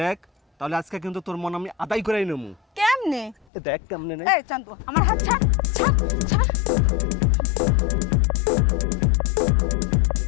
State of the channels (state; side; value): drops out; right; at 3.5 s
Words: দেখ, তাহলে আজকে কিন্তু তোর মন আমি আদায় করেই নেবো। কেমনে? দেখ কেমনে নেই। এই চান্দু, আমার হাত ছাড়, ছাড়, ছাড়।